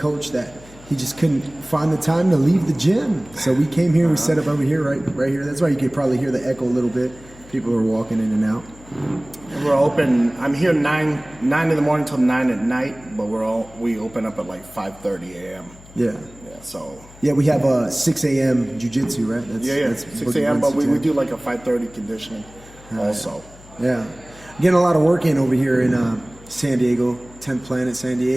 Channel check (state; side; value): noise; left; hum, 22 dB below the sound